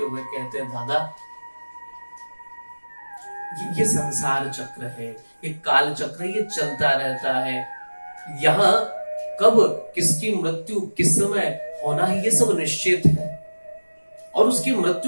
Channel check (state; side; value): inverted; both; correlation -1.00